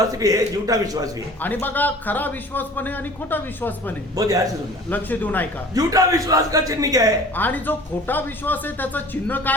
भी है, झूठा विश्वास भी है. आणि बघा, खरा विश्वास पण आहे आणि खोटा विश्वास पण आहे. बहुत ध्यान से सुनना. लक्ष देऊन ऐका. झूठा विश्वास का चिन्ह क्या है? आणि जो खोटा विश्वास आहे त्याचं चिन्ह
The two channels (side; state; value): both; normal; correlation 0.45